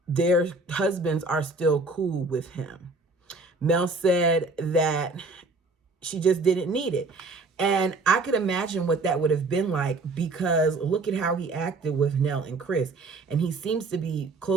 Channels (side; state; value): left; quieter; 3.5 dB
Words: their husbands are still cool with him. Mel said that she just didn't need it. And I could imagine what that would have been like, because look at how he acted with Nell and Chris. And he seems to be